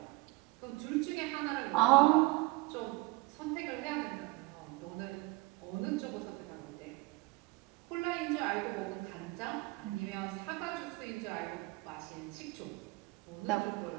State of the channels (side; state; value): left; quieter; 23.9 dB